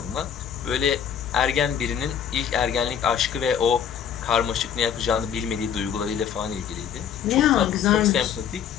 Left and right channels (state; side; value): quieter; right; 8.4 dB